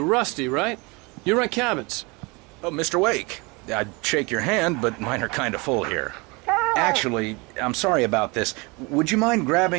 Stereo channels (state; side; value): quieter; left; 27.3 dB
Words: right? You rent cabins. Oh, Mr. Wake. I'd shake your hand, but mine are kind of full here. Actually, I'm sorry about this. Would you mind